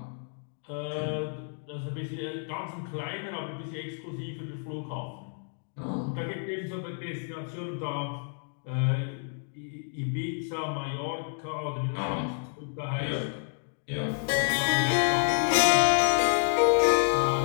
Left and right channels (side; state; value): right; silent; 58 dB below the other